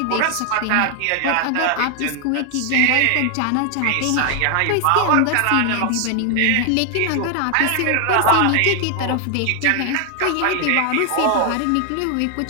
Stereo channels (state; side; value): different; both; correlation 0.00